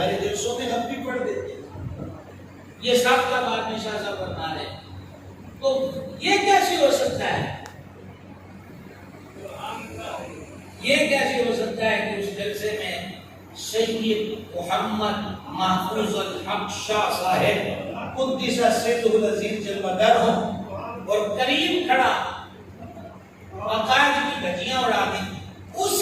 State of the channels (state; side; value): identical; both; correlation 1.00